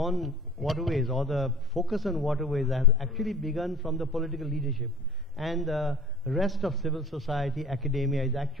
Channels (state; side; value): normal; both; correlation 0.44